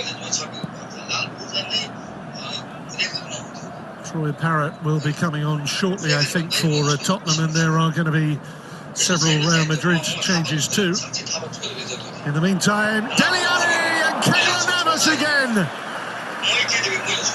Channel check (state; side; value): identical; both; correlation 1.00